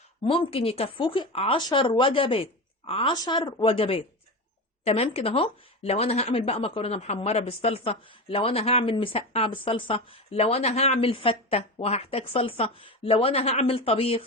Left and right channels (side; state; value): both; normal; correlation 0.23